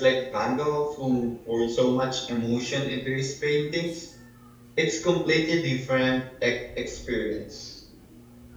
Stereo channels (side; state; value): both; identical; correlation 1.00